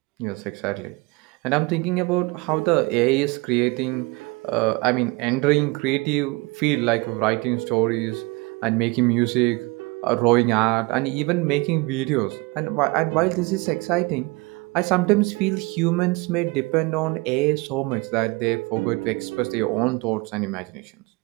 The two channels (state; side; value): quieter; left; 25.4 dB